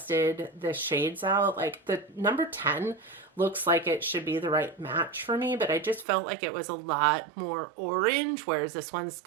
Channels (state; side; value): drops out; left; at 6.1 s